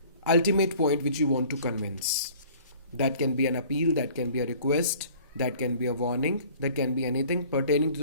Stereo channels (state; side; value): inverted; both; correlation -0.51